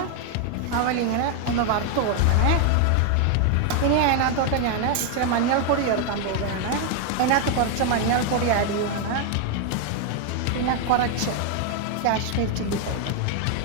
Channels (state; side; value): different; both; correlation 0.01